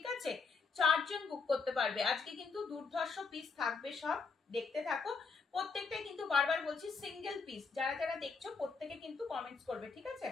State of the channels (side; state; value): right; quieter; 4.7 dB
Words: আছে, চারজন বুক করতে পারবে। আজকে কিন্তু দুর্ধর্ষ পিস থাকবে, সব দেখতে থাকো। প্রত্যেকটাই কিন্তু বারবার বলছি সিঙ্গেল পিস, যারা যারা দেখছো প্রত্যেকে কিন্তু কমেন্টস করবে, ঠিক আছে,